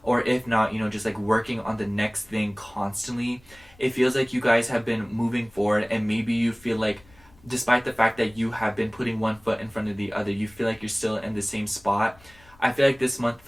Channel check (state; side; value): noise; left; rumble, 27 dB below the sound